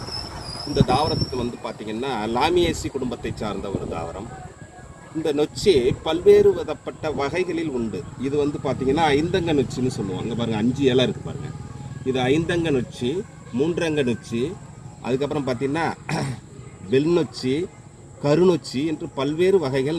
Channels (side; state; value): both; identical; correlation 1.00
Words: இந்த தாவரத்துக்கு பார்த்திங்கன்னா லாமியேசி குடும்பத்தை சார்ந்த ஒரு தாவரம். இந்த நொச்சி பல்வேறு விதப்பட்ட வகைகளில் உண்டு. இது பார்த்திங்கன்னா ஐந்தங்க நொச்சின்னு சொல்லுவாங்க. பாருங்கள், 5 இலை இருக்குது பாருங்கள். இது ஐந்தங்க நொச்சி, 3 அங்க நொச்சி, அதுக்கப்புறம் பார்த்திங்கன்னா வெள்நொச்சி, கருநொச்சி என்று பல்வேறு வகைகள்